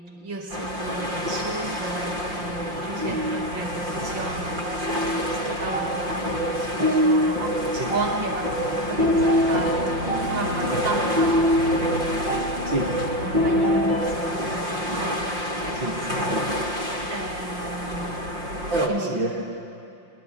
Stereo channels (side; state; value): left; late; 5.7 ms